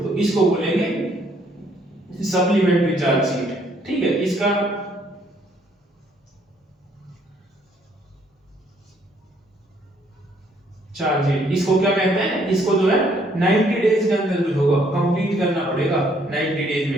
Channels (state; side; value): normal; both; correlation 0.67